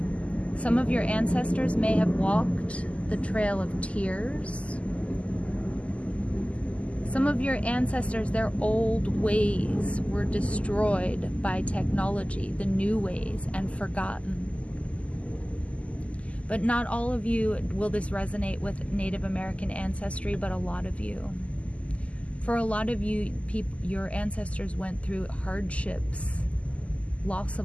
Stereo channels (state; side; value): late; right; 0.064 ms